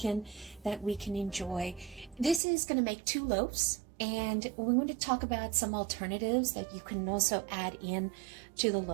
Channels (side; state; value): left; drops out; at 2.4 s